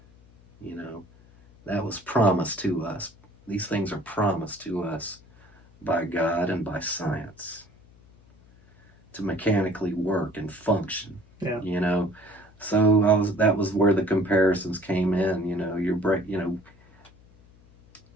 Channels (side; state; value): left; noise; hum, 27 dB below the sound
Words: That was promised to us. These things are promised to us by God and by science to mechanically work and function. Yeah. So that was where the comparisons came in.